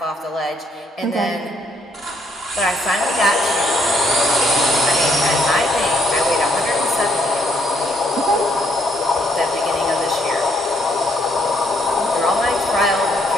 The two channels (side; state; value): both; normal; correlation 0.70